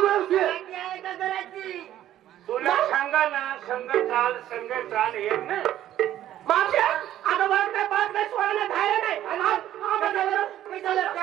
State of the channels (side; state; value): left; quieter; 12.4 dB